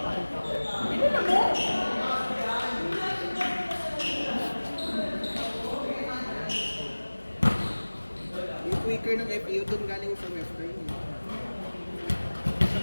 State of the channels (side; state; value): both; inverted; correlation -1.00